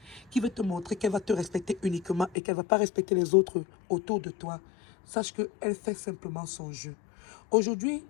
qui veut te montrer qu'elle va te respecter uniquement et qu'elle ne va pas respecter les autres autour de toi, sache qu'elle fait simplement son jeu. Aujourd'hui,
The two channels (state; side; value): drops out; right; at 2.4 s